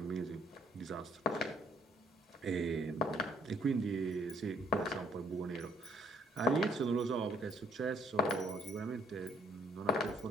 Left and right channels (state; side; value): normal; both; correlation 0.66